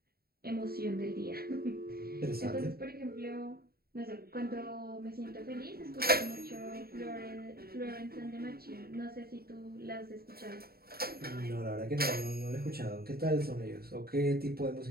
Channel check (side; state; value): left; late; 0.45 ms